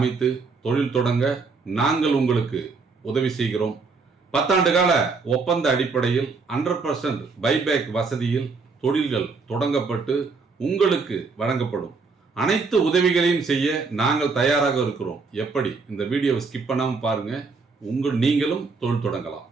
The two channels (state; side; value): quieter; left; 4.4 dB